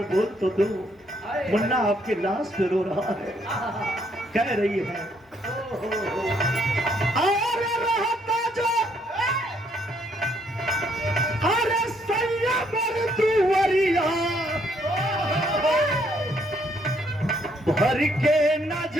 बोल तो दो। मुन्ना आपके लाश पे रो रहा है, कह रही है अरे रहता जो अरे सैया मरदुवरिया भर के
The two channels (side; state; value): both; normal; correlation 0.70